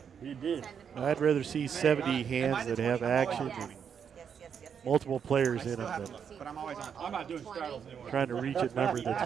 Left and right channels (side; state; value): left; quieter; 7.4 dB